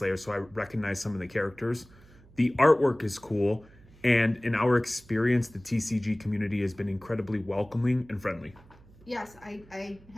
so I recognize some of the characters. The artwork is cool. And in our experience, the TCG community has been incredibly welcoming and friendly. Yes, I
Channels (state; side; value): noise; right; hum, 25 dB below the sound